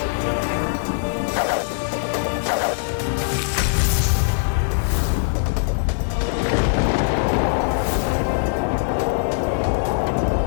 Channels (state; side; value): silent; right; digital silence